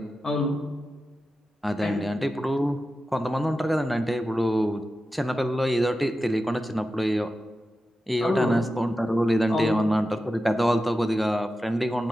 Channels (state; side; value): normal; both; correlation 0.92